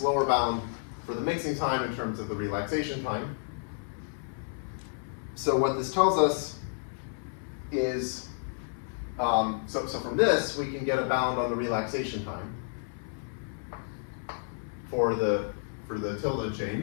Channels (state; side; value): silent; right; 57 dB below the other